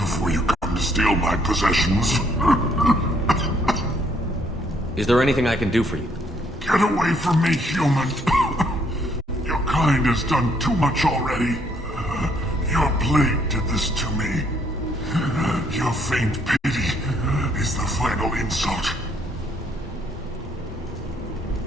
you come to steal my possessions. Is there anything I can do for you? Get away from me, human. Your kind has done too much already. Your plague did this to me. Your faint pity is the final insult.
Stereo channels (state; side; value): normal; both; correlation 0.68